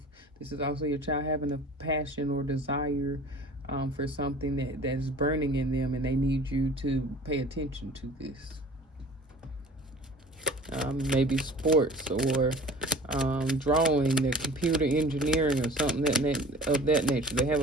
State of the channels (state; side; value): normal; both; correlation 0.44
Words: This is also your child having a passion or desire for something that's burning in them, and they need you to pay attention to this. Maybe sports or drawing, their computer engineering, or something of that nature. They have